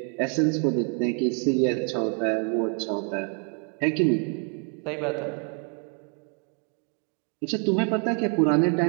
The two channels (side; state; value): left; quieter; 39.3 dB